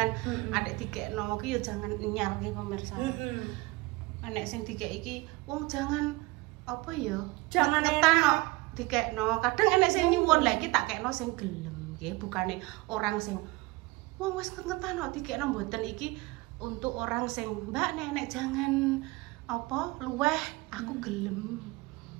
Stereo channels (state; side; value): quieter; left; 22.1 dB